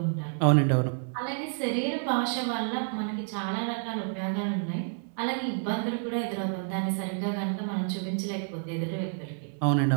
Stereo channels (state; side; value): silent; left; 58 dB below the other